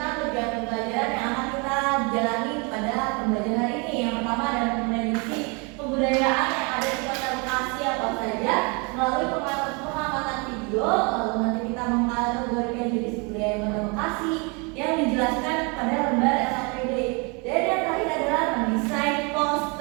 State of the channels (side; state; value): left; quieter; 31.4 dB